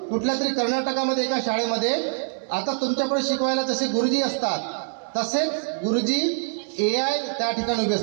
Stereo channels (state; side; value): silent; left; digital silence